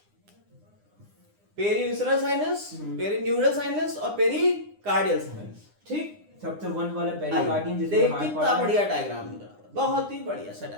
पेरीविसरल साइनस, पेरीन्यूरल साइनस और पेरीकार्डियल साइनस, ठीक। सबसे 1 वाला पेरिकार्डियम जिसमें देख हार्ट कितना बढ़िया डायग्राम मिल रहा है, बहुत ही बढ़िया सा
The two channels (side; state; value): left; late; 9.8 ms